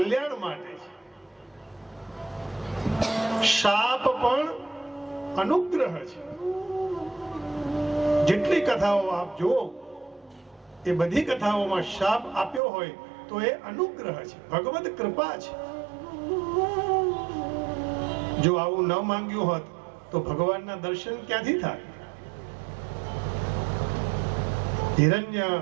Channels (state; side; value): drops out; left; at 12.6 s